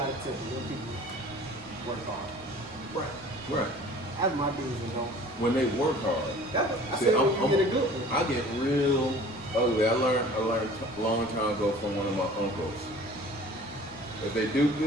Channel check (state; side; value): noise; left; rumble, 24 dB below the sound